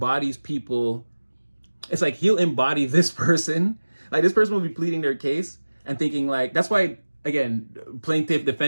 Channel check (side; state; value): both; inverted; correlation -1.00